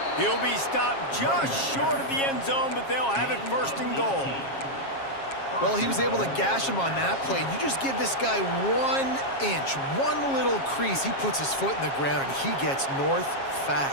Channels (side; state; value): right; late; 7.4 ms